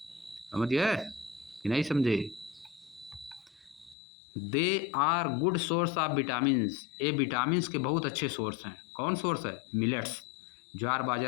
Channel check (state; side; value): drops out; right; at 4.0 s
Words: समझ गए कि नहीं समझे? They are good source of vitamins, ये विटामिन्स के बहुत अच्छे सोर्स हैं। कौन सोर्स है? मिलेट्स, ज्वार